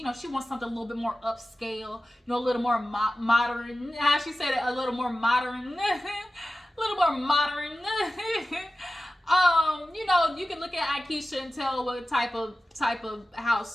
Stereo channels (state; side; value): normal; both; correlation 0.94